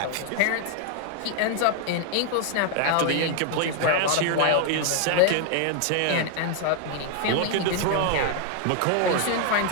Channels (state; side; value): different; both; correlation 0.00